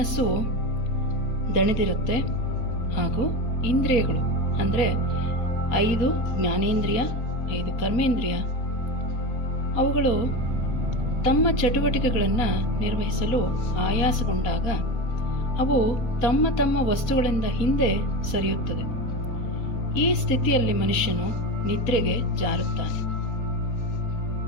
ದಣಿದಿರುತ್ತೆ ಹಾಗೂ ಇಂದ್ರಿಯಗಳು ಅಂದರೆ 5 ಜ್ಞಾನೇಂದ್ರಿಯ 5 ಕರ್ಮೇಂದ್ರಿಯ ಅವುಗಳು ತಮ್ಮ ಚಟುವಟಿಕೆಗಳನ್ನು ನಿರ್ವಹಿಸಲು ಆಯಾಸಗೊಂಡಾಗ ಅವು ತಮ್ಮ ತಮ್ಮ ವಸ್ತುಗಳಿಂದ ಹಿಂದೆ ಸರಿಯುತ್ತದೆ. ಈ ಸ್ಥಿತಿಯಲ್ಲಿ ಮನುಷ್ಯನು ನಿದ್ರೆಗೆ ಜಾರುತ್ತಾನೆ.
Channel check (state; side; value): late; right; 4.4 ms